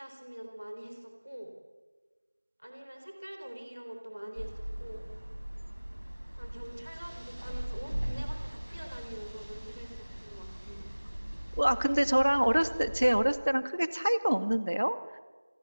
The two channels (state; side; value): inverted; both; correlation -1.00